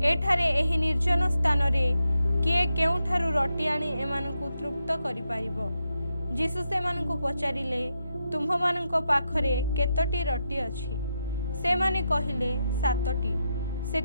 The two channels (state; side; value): inverted; both; correlation -0.85